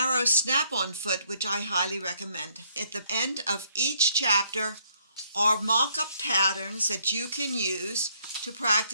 snap-on foot, which I highly recommend. At the end of each chapter are mock-up patterns that you can use to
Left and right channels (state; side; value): inverted; both; correlation -0.69